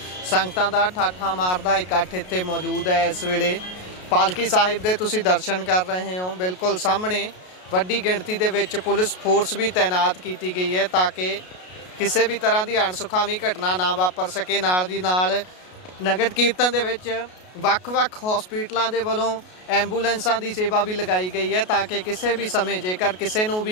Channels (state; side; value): late; right; 33 ms